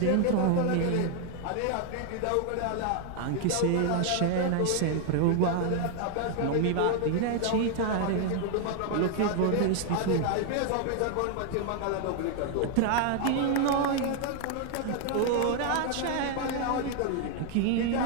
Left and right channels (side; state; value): both; different; correlation 0.00